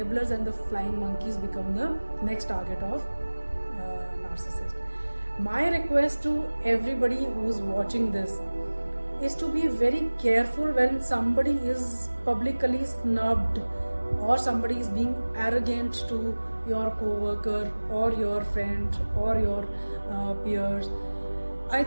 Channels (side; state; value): both; inverted; correlation -1.00